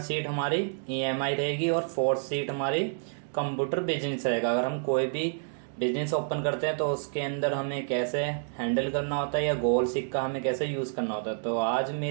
हमारी ईएमआई रहेगी और फोर्थ सीट हमारी कंप्यूटर बिजनेस रहेगा। अगर हम कोई भी बिजनेस ओपन करते हैं तो उसके अंदर हमें कैसे हैंडल करना होता है या गोल सीट का हमें कैसे यूज़ करना होता है। तो आज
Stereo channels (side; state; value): left; silent; digital silence